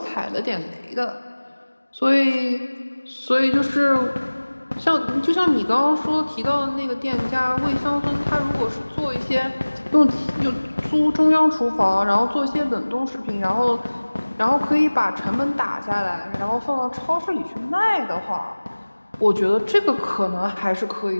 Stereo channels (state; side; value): inverted; both; correlation -1.00